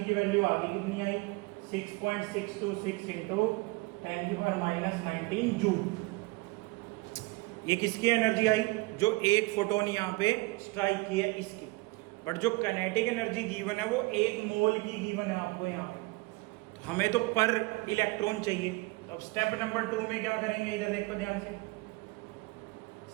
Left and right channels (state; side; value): quieter; left; 23.8 dB